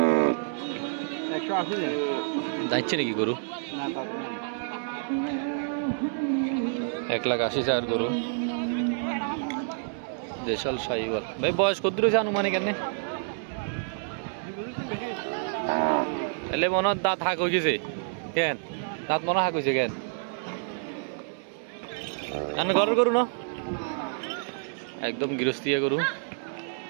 180 যাচ্ছে নাকি গরু? 1,80,000 গরু, দেশাল শাহিওয়াল। ভাই বয়স কত রয়েছে আনুমানিক? কেন এলে মনে হয় দাঁত হাঁক হয়ে গেছে কেন? দাঁত মনে হাঁক হয়েছে কেন? ঘরের গরু না, একদম গৃহস্থিয়া গরু,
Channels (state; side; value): silent; left; 59 dB below the other